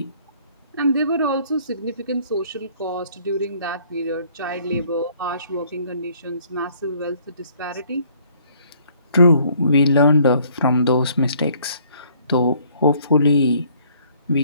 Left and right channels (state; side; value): inverted; both; correlation -0.61